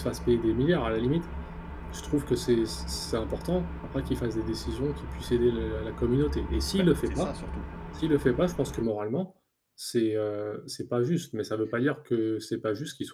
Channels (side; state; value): both; identical; correlation 1.00